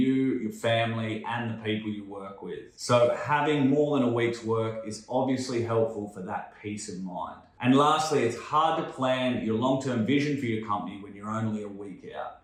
your family, and the people you work with. So having more than a week's work is obviously helpful for that peace of mind. And lastly, it's hard to plan your long-term vision for your company when you're only a week out.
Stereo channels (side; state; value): both; identical; correlation 1.00